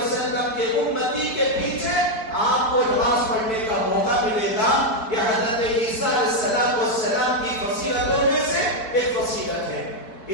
کے امتی کے پیچھے آپ کو نماز پڑھنے کا موقع ملے گا. یہ حضرت عیسیٰ علیہ السلام کی فضیلتوں میں سے ایک فضیلت ہے.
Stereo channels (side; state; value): right; late; 4.6 ms